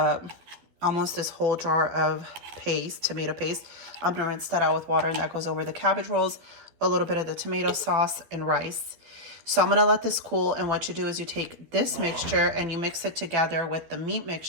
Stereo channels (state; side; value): late; left; 12 ms